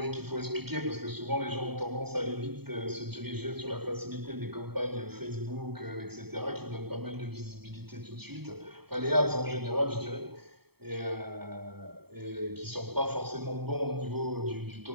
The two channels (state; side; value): late; left; 0.96 ms